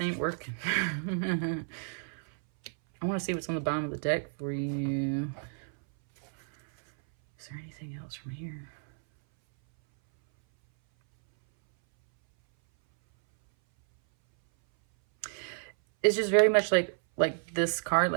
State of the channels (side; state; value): left; silent; 57 dB below the other